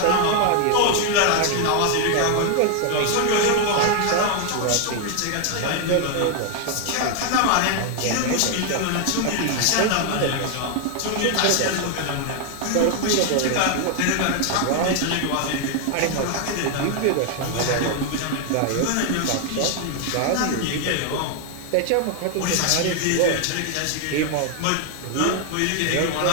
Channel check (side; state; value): both; different; correlation 0.00